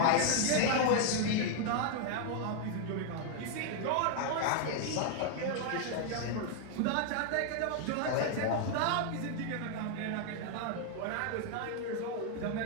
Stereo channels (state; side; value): different; both; correlation 0.00